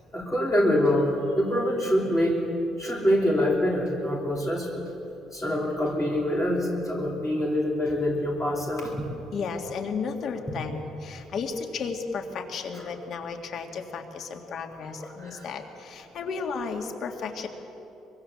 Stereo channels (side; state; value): both; normal; correlation 0.80